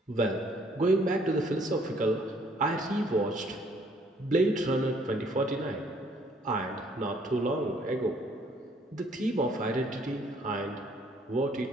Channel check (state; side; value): normal; both; correlation 0.63